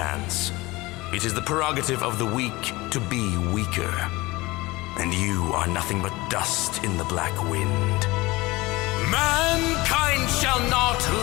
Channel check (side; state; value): right; quieter; 21.4 dB